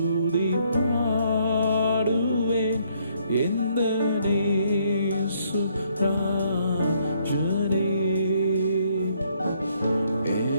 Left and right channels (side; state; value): both; inverted; correlation -0.69